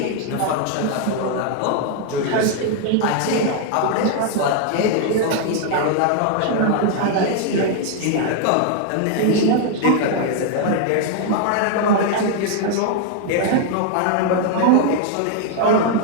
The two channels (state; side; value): different; both; correlation 0.00